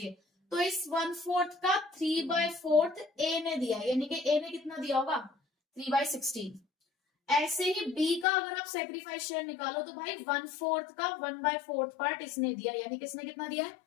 तो इस 1/4 का 3/4 ए ने दिया, यानी कि ए ने कितना दिया होगा? 3/16। ऐसे ही बी का अगर आप सैक्रिफाइस शेयर निकालो तो भाई 1/4 का 1/4 पार्ट इसने दिया, यानी किसने कितना दिया है?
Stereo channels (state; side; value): drops out; right; at 8.2 s